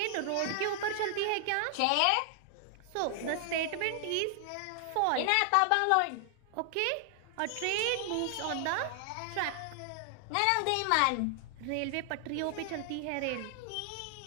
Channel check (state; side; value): different; both; correlation 0.00